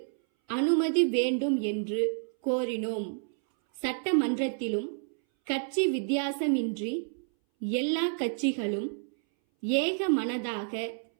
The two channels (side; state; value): left; silent; 58 dB below the other